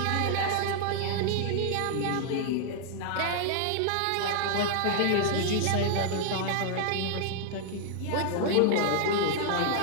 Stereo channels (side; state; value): both; different; correlation -0.01